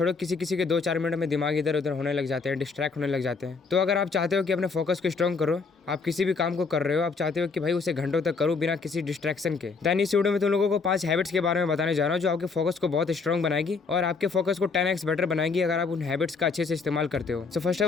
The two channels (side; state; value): right; quieter; 4.6 dB